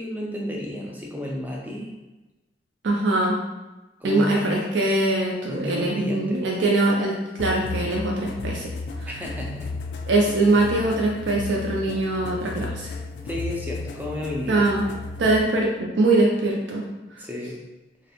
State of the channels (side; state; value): both; normal; correlation 0.50